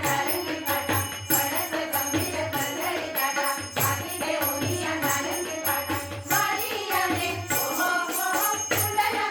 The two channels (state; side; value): identical; both; correlation 1.00